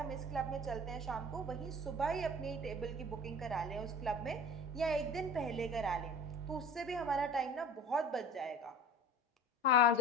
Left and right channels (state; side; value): normal; both; correlation 0.38